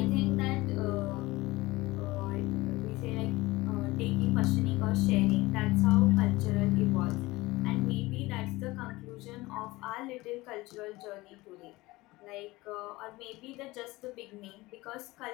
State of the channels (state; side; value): quieter; right; 20.4 dB